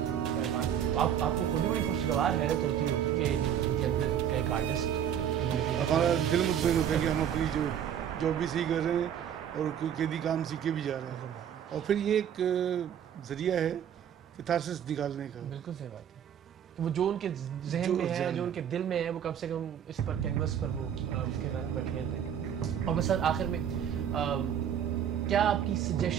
आपको खुद ही बड़ी खुशगवार हैरत होती होगी कि इनके अंदर का एक आर्टिस्ट। हमारा दिल मुतमईन होता है कि हम अपनी जो जॉब भी सही कर रहे हैं और कोई कैदी काम सीख के भी जा रहे हैं। और फिर ये एक ज़रिया है कैथारसिस निकालने का। बिल्कुल सही बात है कि वो जो उनके जहन में है, जो उनके दिल में है, वो कम से कम इस पर कैनवस पर वो उसके रंग बखेर दें। और बस आखिर में क्या आपकी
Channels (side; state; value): left; quieter; 9.2 dB